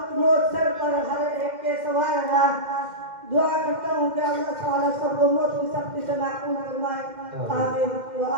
موت سر پر ہر ایک کے سوار ہے. دعا کرتا ہوں کہ اللہ تعالیٰ سب کو موت کی سختی سے محفوظ فرمائے. آمین.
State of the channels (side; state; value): left; late; 2.1 ms